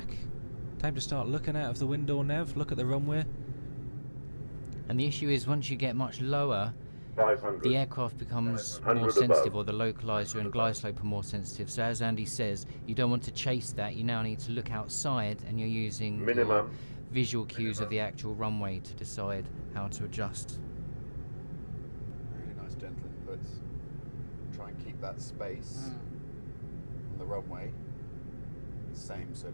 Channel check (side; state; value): both; inverted; correlation -1.00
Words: Time to start looking out of the window, Nev. Look at the runway. And the issue is once you get much lower, 500. the aircraft becomes 100 more above. sensitive, or the localizer and glide slope are more sensitive. So as Andy says, you don't want to chase that. You now need to look outside, and you're using your Minimum. visual cues of the actual runway to decide how to adjust. Really nice gentle inputs. Try and keep that space on the runway the same. So